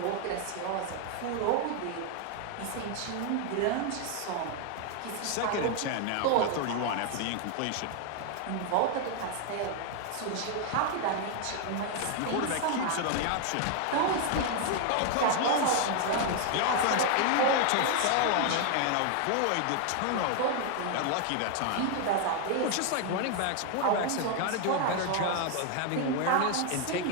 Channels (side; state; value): both; different; correlation 0.00